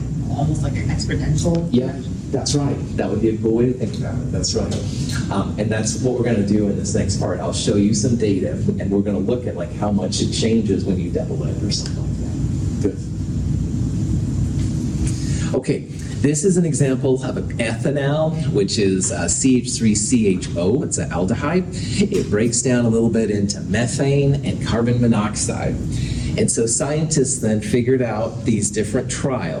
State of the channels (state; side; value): identical; both; correlation 1.00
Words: almost like an exponential. Yeah, that's right. That would be a cool way to think about it. That's right. And that's what we're going to do in this next part. I'll show you some data, and we're going to look at like how much it changes when you double it or something like that. Good. Okay. This is an example of an ethanol, which is CH3CHO. It's an aldehyde. It breaks down a little bit into methane and carbon monoxide. And so scientists then figured out these different